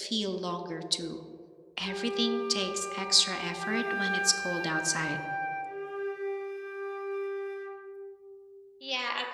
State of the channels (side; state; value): both; identical; correlation 1.00